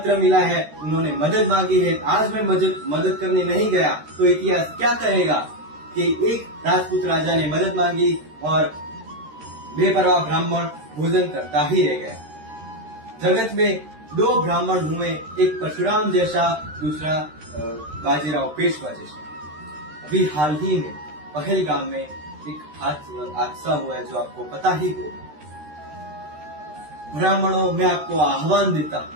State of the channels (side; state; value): left; late; 13 ms